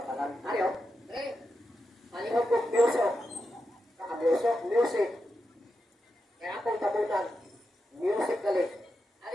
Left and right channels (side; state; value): both; normal; correlation 0.88